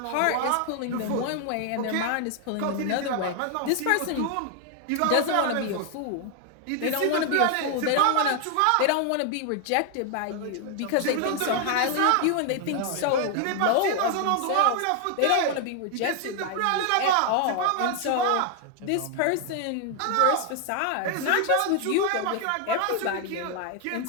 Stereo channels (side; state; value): both; different; correlation 0.00